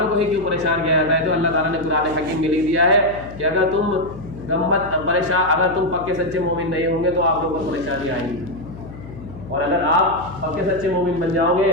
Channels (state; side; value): noise; left; hum, 14 dB below the sound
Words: کو ہی کیوں پریشان کیا جاتا ہے. تو اللہ تعالیٰ نے قرآن حکیم میں لکھ دیا ہے کہ اگر تم اگر تم پکے سچے مومن نہیں ہوں گے تو آپ لوگوں کو پریشانی آئیں گی, اور اگر آپ پکے سچے مومن بن جاؤ